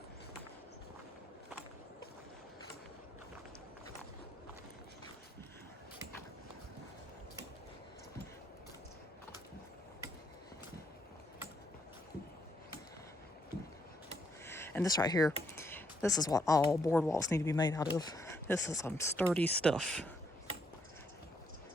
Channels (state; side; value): normal; both; correlation 0.73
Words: And this right here, this is what all boardwalks need to be made out of. This is some sturdy stuff.